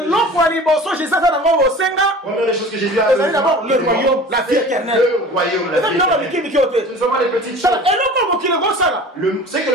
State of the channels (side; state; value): both; normal; correlation 0.40